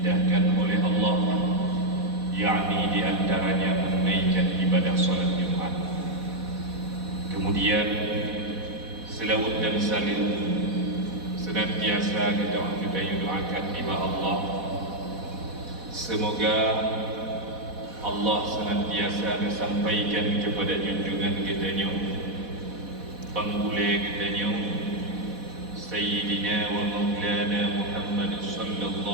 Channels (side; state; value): left; late; 4.1 ms